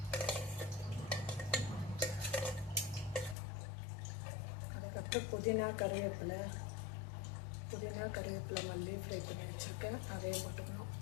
அதுக்கப்புறம் புதினா, கருவேப்பிலை மல்லி ஃப்ரை பண்ணி வச்சுருக்கேன். அதையும் போட்டுக்கணும்.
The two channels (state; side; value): drops out; right; at 3.4 s